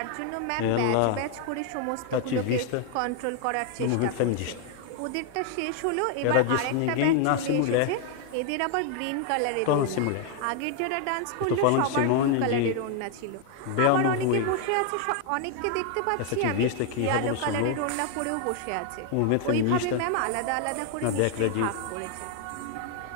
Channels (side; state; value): both; different; correlation 0.00